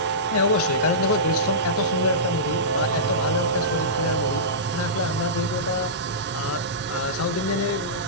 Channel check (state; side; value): normal; both; correlation -0.19